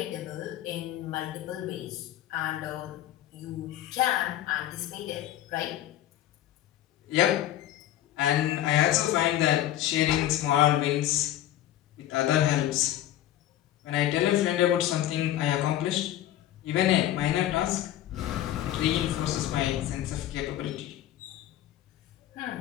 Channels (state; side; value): quieter; right; 12.8 dB